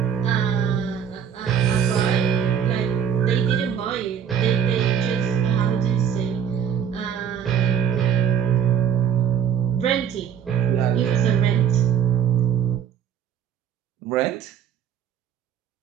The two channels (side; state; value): left; quieter; 8.4 dB